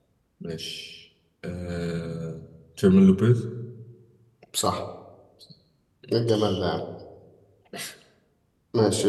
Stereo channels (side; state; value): both; identical; correlation 1.00